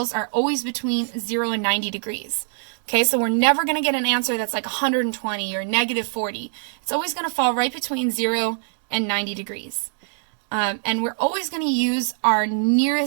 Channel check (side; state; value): left; silent; digital silence